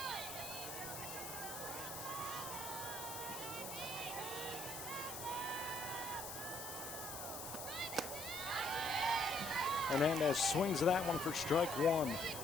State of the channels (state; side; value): noise; left; hiss, 7 dB below the sound